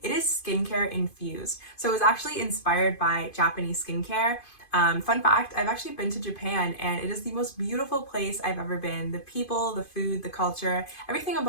it is skincare infused. So it was actually inspired by Japanese skincare. Fun fact, I've actually been to Japan and it is the most beautiful place I've ever been. The people, the food, the culture, everything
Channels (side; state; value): right; late; 2.5 ms